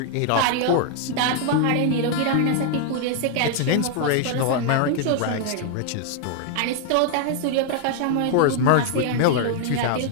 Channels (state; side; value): different; both; correlation 0.00